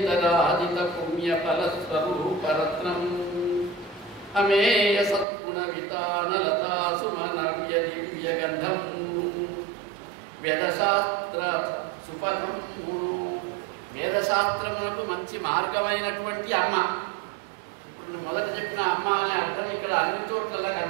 పుణ్య ఫలస్వరూపరత్నం అమేయ సద్గుణ వితానలతా సుమనవ్య దివ్య గంధం వేదశాస్త్ర సుపథమును వేదశాస్త్రమునకు మంచి మార్గమైనటువంటి అమ్మ. ఇప్పుడు మొదట చెప్పిన అమ్మ అనే అర్థం ఇక్కడ అన్ని చోట్లలా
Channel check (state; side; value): drops out; left; at 5.2 s